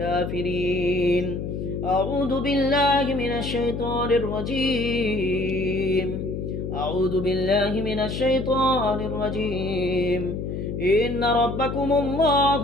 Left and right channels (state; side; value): noise; left; hum, 5 dB below the sound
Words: أعوذ بالله من الشيطان الرجيم. أعوذ بالله من الشيطان الرجيم. إن ربكم